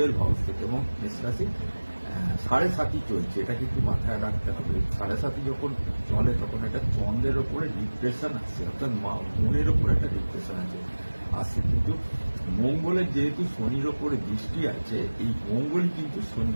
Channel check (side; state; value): both; inverted; correlation -1.00